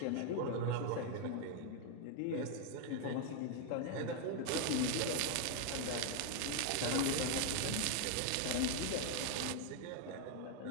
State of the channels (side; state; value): both; different; correlation 0.00